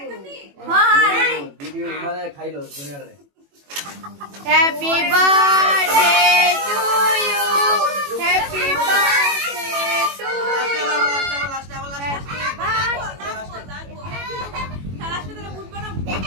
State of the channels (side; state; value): left; late; 21 ms